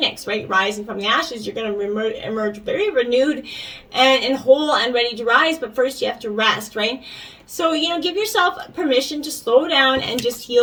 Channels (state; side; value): identical; both; correlation 1.00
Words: right? Rising from the ashes, you're going to emerge very renewed and whole and ready to rise, but first you have to rest, right? So, give yourself permission to slow down and just